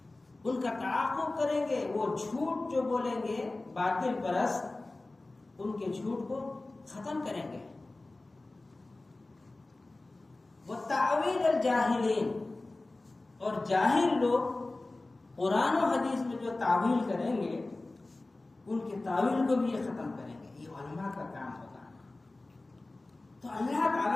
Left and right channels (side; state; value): right; quieter; 3.0 dB